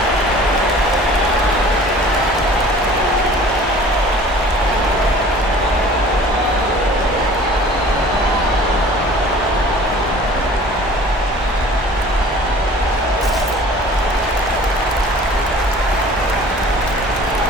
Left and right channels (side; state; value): both; normal; correlation 0.47